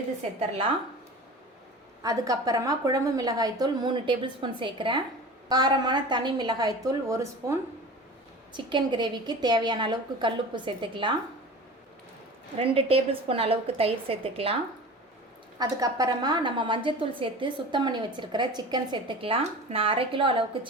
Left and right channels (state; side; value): normal; both; correlation 0.36